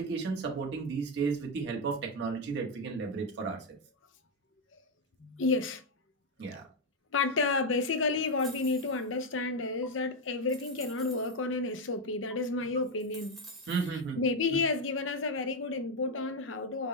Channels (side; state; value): both; normal; correlation 0.05